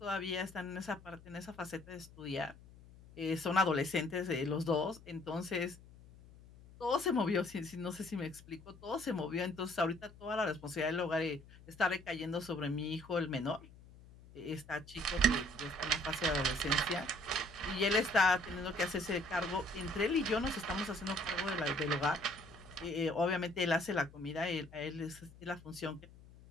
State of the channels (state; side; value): noise; left; hum, 21 dB below the sound